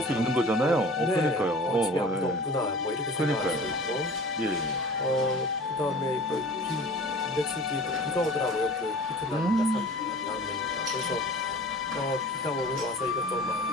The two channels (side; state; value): both; normal; correlation 0.42